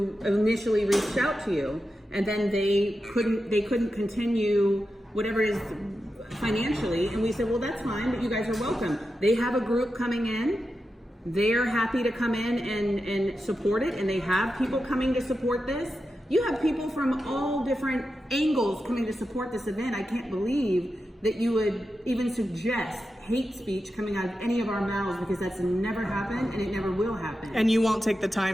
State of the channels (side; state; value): both; normal; correlation 0.90